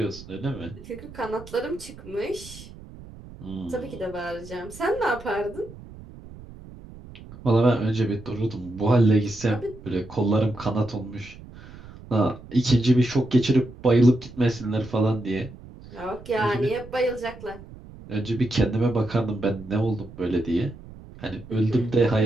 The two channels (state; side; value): noise; right; rumble, 17 dB below the sound